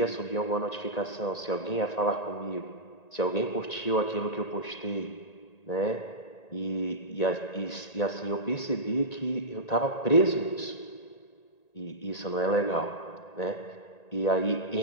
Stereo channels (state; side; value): late; right; 1.9 ms